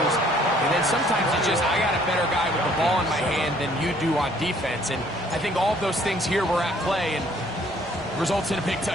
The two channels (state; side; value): normal; both; correlation 0.60